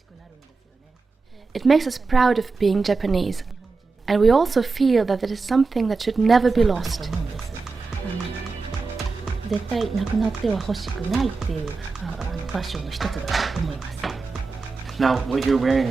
It makes us proud of being Japanese, and we also feel that it is something that should never be lost. Now, what you're wearing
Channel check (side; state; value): left; quieter; 4.2 dB